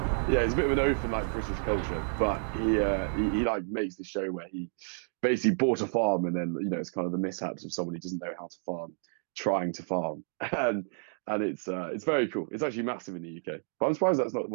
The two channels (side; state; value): left; silent; digital silence